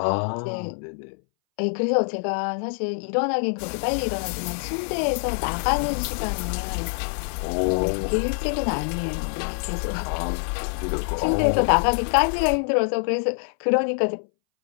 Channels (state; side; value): silent; right; 61 dB below the other